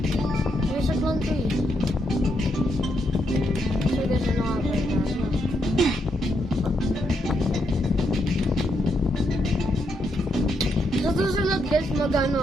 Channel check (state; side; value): normal; both; correlation 0.79